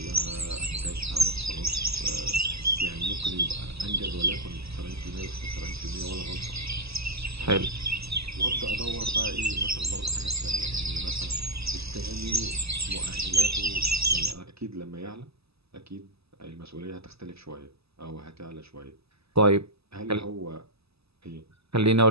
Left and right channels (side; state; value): left; late; 0.78 ms